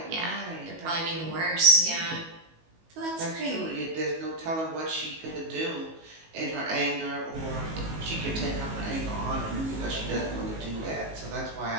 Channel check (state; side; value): late; left; 19 ms